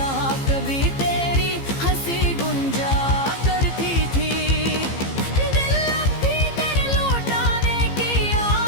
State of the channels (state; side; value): late; right; 15 ms